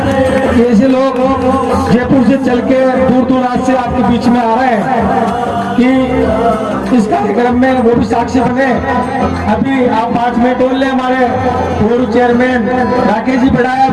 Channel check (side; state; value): both; identical; correlation 1.00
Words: ऐसे लोग जयपुर से चल के दूर दूर रात से आपके बीच में आ रहे हैं कि इस कार्यक्रम में वो भी साक्षी बने। अभी आप 5 मिनट और ले, हमारे पूर्व चेयरमैन राकेश जी बढ़ाया